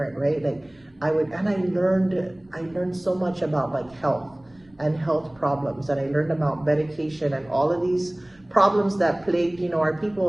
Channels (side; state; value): right; noise; rumble, 30 dB below the sound